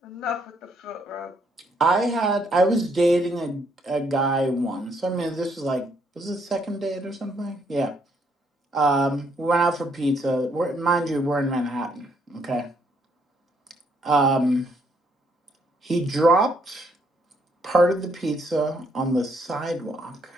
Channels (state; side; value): normal; both; correlation 0.71